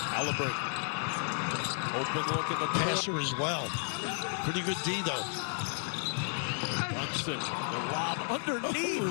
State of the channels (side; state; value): right; silent; 56 dB below the other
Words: Halliburton. Open look in the passer as well. Pretty good D, though. Brunson, the lob